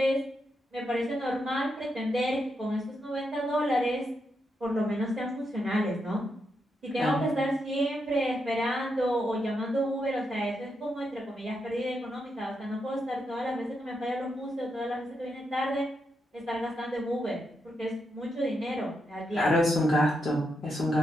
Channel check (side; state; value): both; normal; correlation 0.83